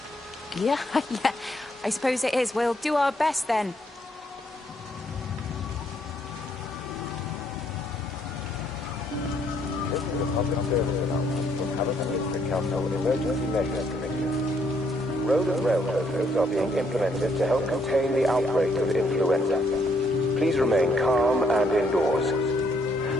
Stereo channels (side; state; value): both; normal; correlation 0.71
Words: Yeah, yeah. I suppose it is. We'll do our best, then. This is a public service announcement from Hamilton Council Emergency Measures Committee. Road and rail closures are being implemented to help contain the outbreak of influenza. Please remain calm and indoors.